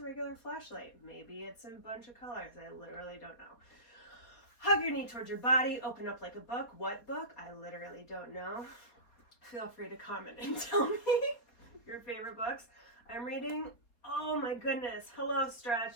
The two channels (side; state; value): right; late; 4.0 ms